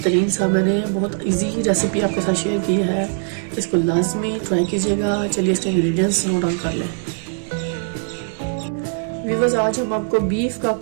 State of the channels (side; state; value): left; silent; digital silence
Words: सा, मैंने बहुत इजी रेसिपी आपके साथ शेयर की है। इसको लाजमी ट्राई कीजिएगा। चलिए इसके इंग्रेडिएंट्स नोट डाउन कर लें। व्यूअर्स, आज हम आपको बीफ का